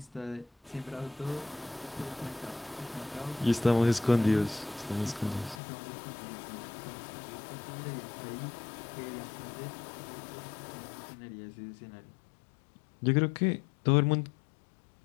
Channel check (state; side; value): drops out; right; at 5.6 s